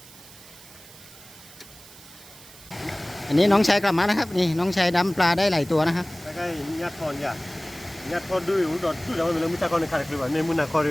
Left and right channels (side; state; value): right; noise; hiss, 20 dB below the sound